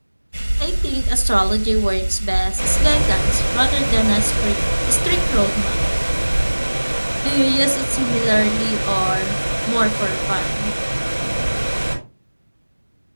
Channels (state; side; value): inverted; both; correlation -1.00